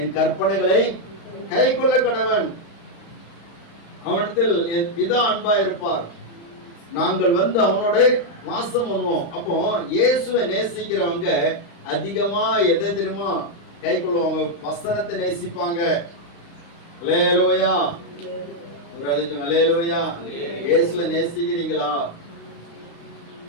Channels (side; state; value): right; late; 35 ms